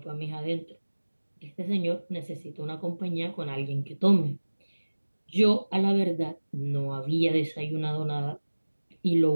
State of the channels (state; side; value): inverted; both; correlation -1.00